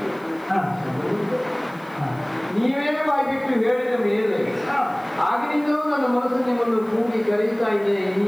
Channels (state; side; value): noise; left; hiss, 29 dB below the sound